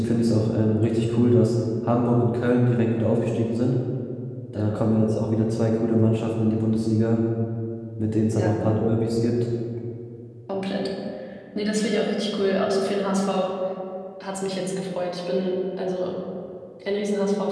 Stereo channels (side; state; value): both; identical; correlation 1.00